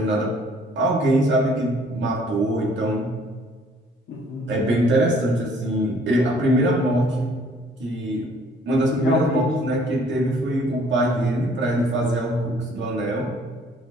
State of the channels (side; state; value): both; normal; correlation 0.59